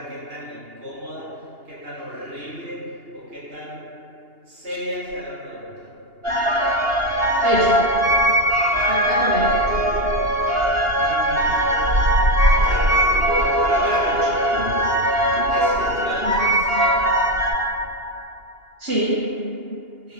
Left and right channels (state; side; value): late; left; 2.8 ms